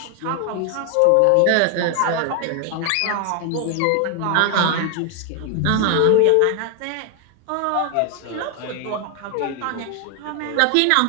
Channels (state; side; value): different; both; correlation 0.01